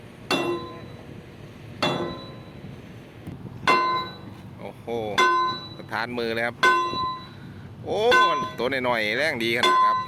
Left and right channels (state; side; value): identical; both; correlation 1.00